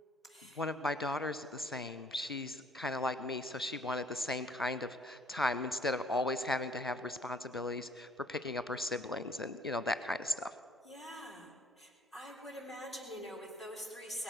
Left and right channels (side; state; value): both; normal; correlation 0.59